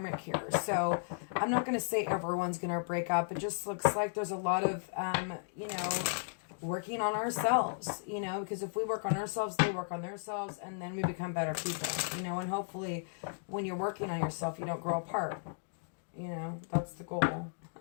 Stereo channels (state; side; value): silent; right; digital silence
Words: here. So I'm not going to say everyone's going to break up. It just looks like there's a lot of, you know, working on ourselves, you know, because if we work on ourselves, they work on themselves, and then we become better people, you know, and hopefully when you're working on yourself, you don't grow apart. You know, that's the goal.